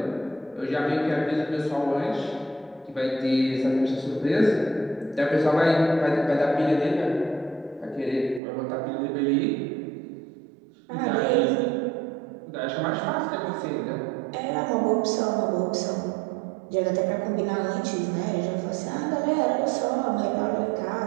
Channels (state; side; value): drops out; left; at 8.4 s